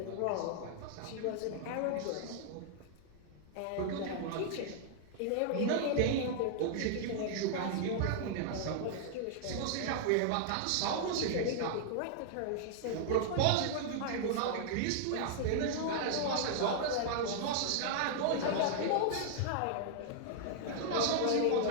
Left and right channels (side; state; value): both; different; correlation -0.01